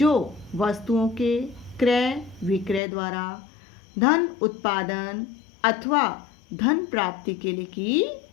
वस्तुओं के क्रय विक्रय द्वारा धन उत्पादन अथवा धन प्राप्ति के लिए की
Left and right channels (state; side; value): drops out; right; at 2.8 s